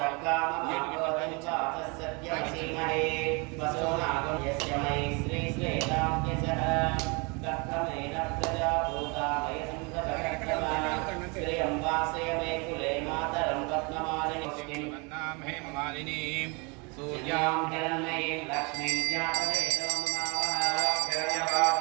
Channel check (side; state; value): left; quieter; 30.7 dB